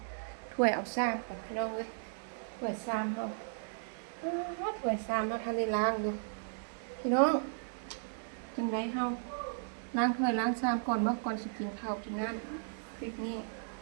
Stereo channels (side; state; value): left; silent; digital silence